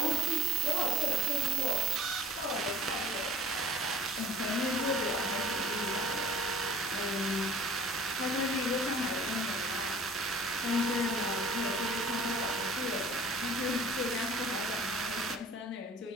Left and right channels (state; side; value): normal; both; correlation 0.44